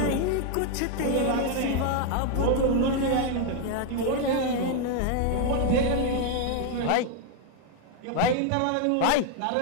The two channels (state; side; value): different; both; correlation 0.01